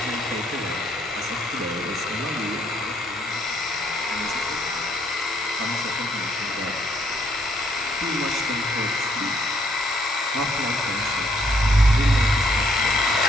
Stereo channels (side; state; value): both; normal; correlation 0.69